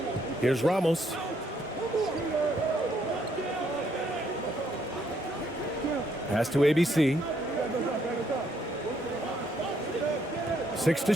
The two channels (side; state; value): both; normal; correlation 0.71